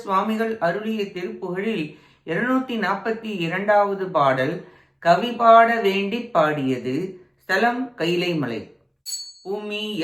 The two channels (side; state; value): both; identical; correlation 1.00